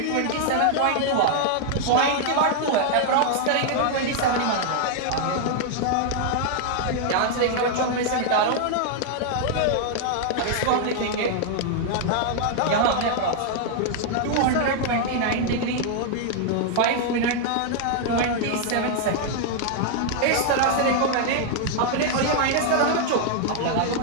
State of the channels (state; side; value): different; both; correlation 0.00